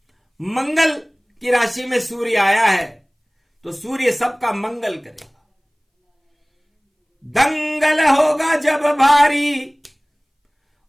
मंगल की राशि में सूर्य आया है, तो सूर्य सबका मंगल करेगा। दंगल होगा जब भारी,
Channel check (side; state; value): both; identical; correlation 1.00